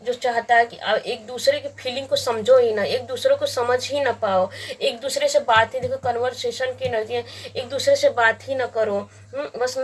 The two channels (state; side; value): identical; both; correlation 1.00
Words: जो चाहता है कि एक दूसरे की फीलिंग को समझो ही ना, एक दूसरे को समझ ही ना पाओ, एक दूसरे से बात ही, देखो कन्वर्सेशन की एनर्जी है, एक दूसरे से बात ही ना करो। बस